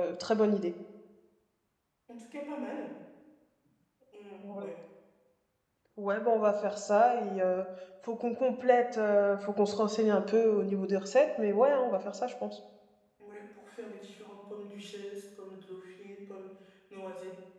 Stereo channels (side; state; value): both; identical; correlation 1.00